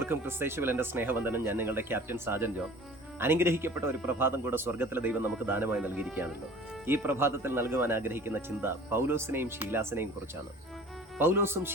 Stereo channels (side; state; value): both; normal; correlation 0.45